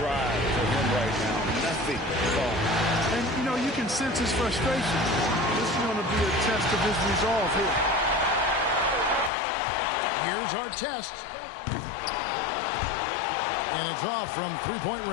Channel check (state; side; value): drops out; right; at 9.3 s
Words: for him right now. Nothing falling. And, you know, you can sense his frustration. This is going to be a test of his resolve here. Here's our test. And it's off from three-point